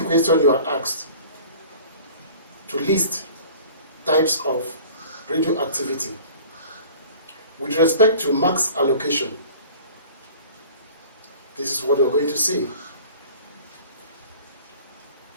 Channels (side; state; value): both; inverted; correlation -0.45